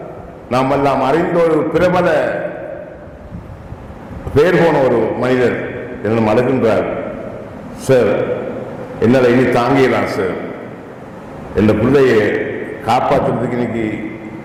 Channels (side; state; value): both; identical; correlation 1.00